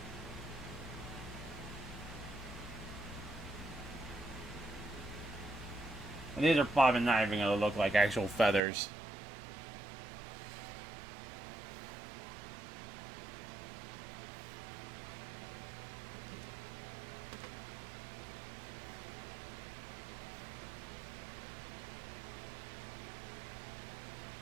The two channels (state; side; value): drops out; left; at 8.6 s